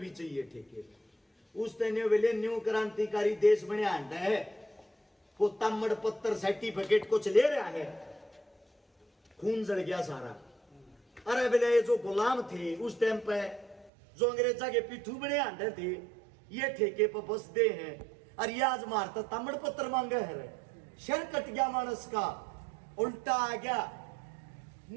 चाहिए ठेके। उस दिन बोले न्यू क्रांतिकारी देश बने आंडा है, वो तामड़ पत्थर सर्टिफिकेट कुछ ले रहा है, खून जल गया सारा। अरे बोले ये जो गुलाम थे उस टाइम पे, जो अंग्रेजा के पिट्ठू बने आंडे थे, ये ठेके पर बस दे हैं। और ये आज मारता तामड़ पत्थर मांगे है, शर कट गया मानस का, उल्टा आ गया।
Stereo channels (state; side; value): drops out; left; at 13.9 s